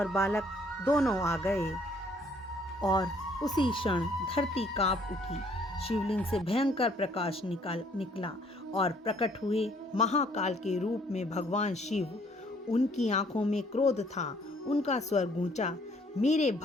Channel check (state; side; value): normal; both; correlation 0.62